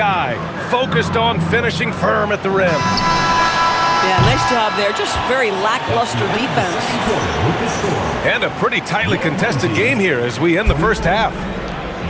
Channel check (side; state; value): both; identical; correlation 1.00